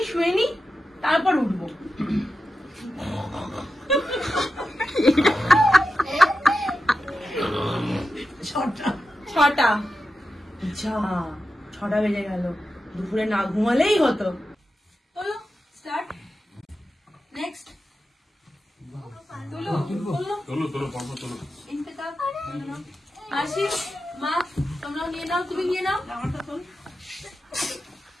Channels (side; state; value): both; normal; correlation 0.91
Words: শুয়ে নি, তারপর উঠবো। 6টা। যা 6টা বেজে গেল, দুপুরে না ঘুমালেই হতো। চলো স্টার্ট। নেক্সট আসি। মা তোমরাও নিয়ে নাও, তুমি নিয়ে নাও।